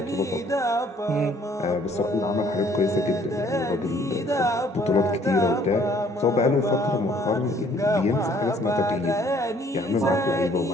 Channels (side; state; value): both; normal; correlation 0.60